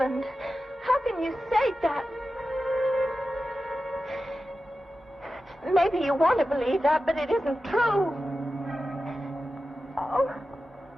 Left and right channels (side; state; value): both; normal; correlation 0.93